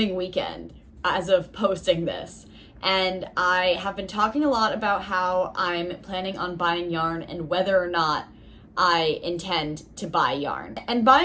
weekend as of posting this. And I have been talking a lot about how I'm planning on buying yarn and whether or not I intend to buy yarn. And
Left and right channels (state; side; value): identical; both; correlation 1.00